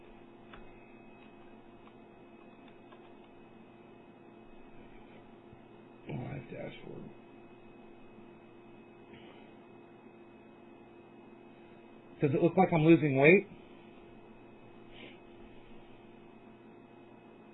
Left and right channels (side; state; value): both; identical; correlation 1.00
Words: Live dashboard. Does it look like I'm losing weight?